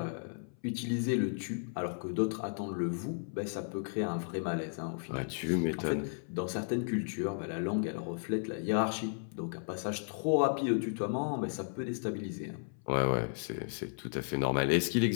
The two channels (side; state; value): right; silent; 55 dB below the other